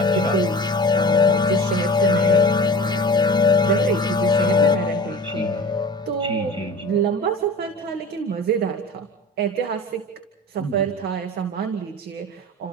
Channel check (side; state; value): both; normal; correlation 0.37